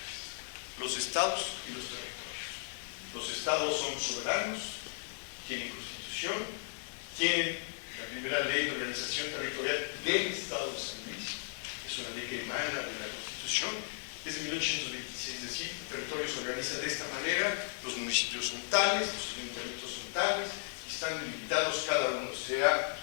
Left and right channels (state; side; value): silent; right; 54 dB below the other